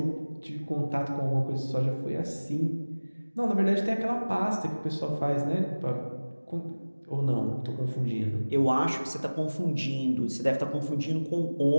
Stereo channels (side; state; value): both; inverted; correlation -1.00